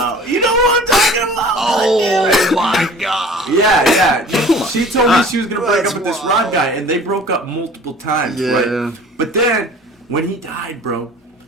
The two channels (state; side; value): normal; both; correlation 0.45